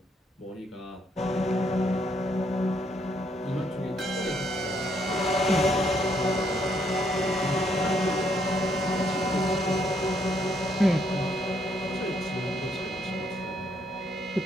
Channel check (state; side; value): normal; both; correlation 0.72